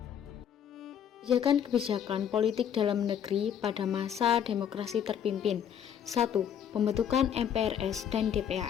Kebijakan politik dalam negeri pada masa demokrasi terpimpin. 1. Pembentukan MPRS dan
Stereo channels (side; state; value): right; quieter; 8.8 dB